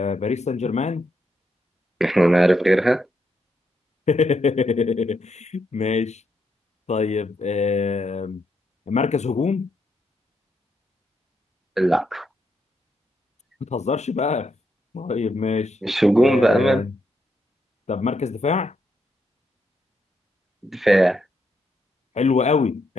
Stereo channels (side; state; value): both; normal; correlation 0.79